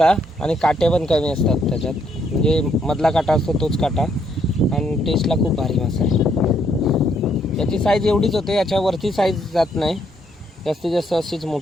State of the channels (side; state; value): both; normal; correlation 0.72